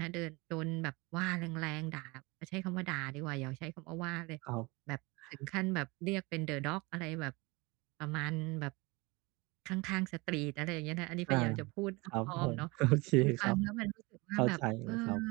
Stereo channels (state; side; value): quieter; left; 25.0 dB